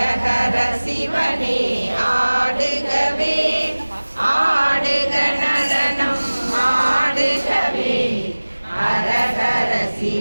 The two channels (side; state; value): both; inverted; correlation -1.00